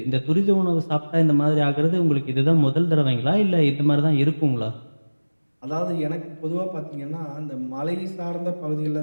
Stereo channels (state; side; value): inverted; both; correlation -1.00